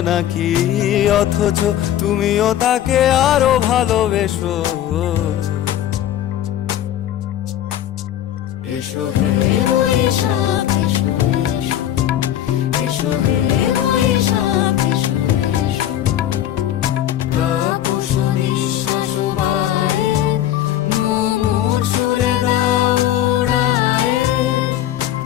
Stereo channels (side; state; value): right; quieter; 11.8 dB